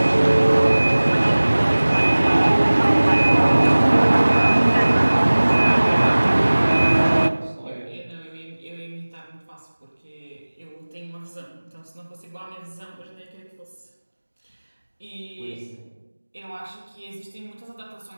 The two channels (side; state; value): both; inverted; correlation -1.00